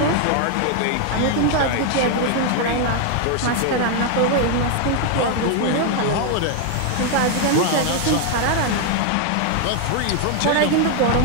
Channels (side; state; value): both; different; correlation 0.00